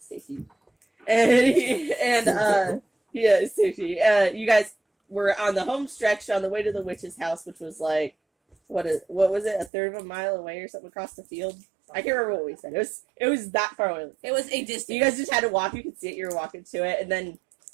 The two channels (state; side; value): drops out; left; at 9.7 s